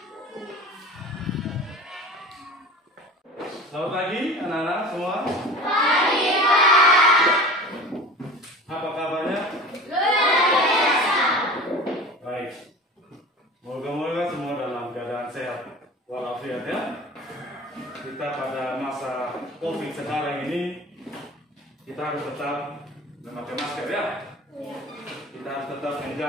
Selamat pagi anak-anak semua. Pagi, Pak. Apa kabarnya? Luar biasa. Baik. Moga-moga semua dalam keadaan sehat walafiat ya. Kita pada masa COVID sekarang ini kita harus tetap memakai masker ya. Kita harus tetap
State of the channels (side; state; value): both; normal; correlation 0.38